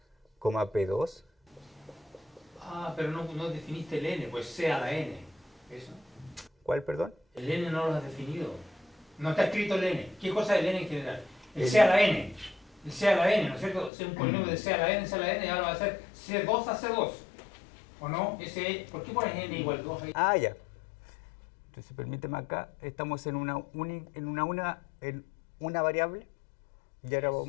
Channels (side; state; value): right; drops out; at 13.9 s